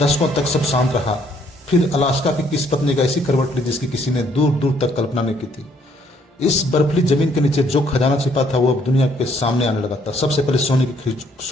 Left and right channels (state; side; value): normal; both; correlation 0.66